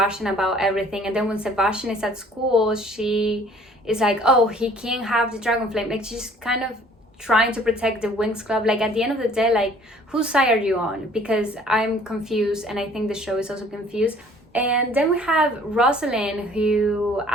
about everything. And then when Sebastian is at school, she is like, oh, he can't have the dragon flame. Like, she's kind of trying to protect the Winx Club. Like, at the end of the day, like, whose side are you on? Because I'm confused, and I think the show is also confused. And then we have Rosalind, who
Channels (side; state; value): both; normal; correlation 0.55